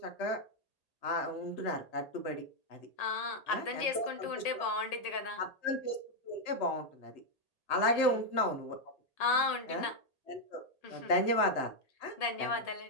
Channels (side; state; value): right; late; 1.8 ms